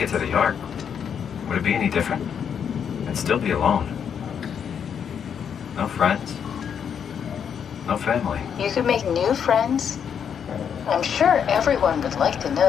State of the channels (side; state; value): right; quieter; 7.7 dB